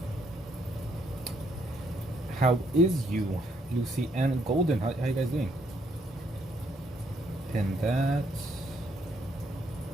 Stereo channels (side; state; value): both; normal; correlation 0.71